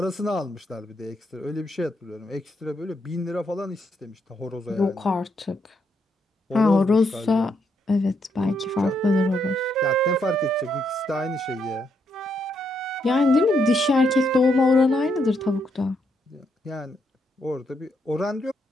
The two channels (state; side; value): normal; both; correlation 0.77